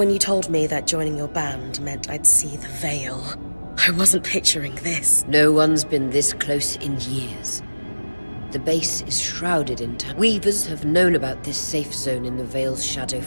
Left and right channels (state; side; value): inverted; both; correlation -1.00